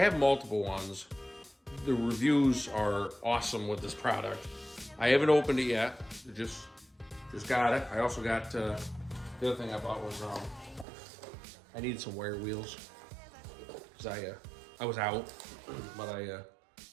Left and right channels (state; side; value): drops out; left; at 10.9 s